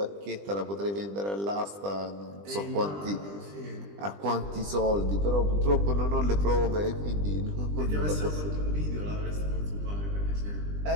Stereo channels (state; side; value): late; left; 20 ms